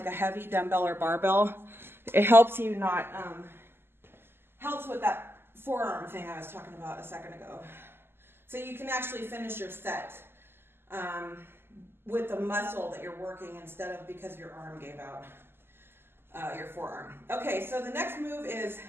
a heavy dumbbell or barbell. It helps you not, helps with that forearm thing I was talking about a second ago. So you can actually finish your set with the muscle that you're working instead of because your arm gave out, your forearm. Okay, so the next move is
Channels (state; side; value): late; left; 0.11 ms